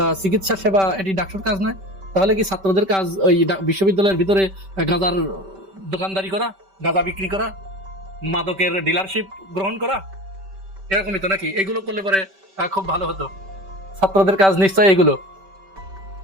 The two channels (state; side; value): late; left; 5.2 ms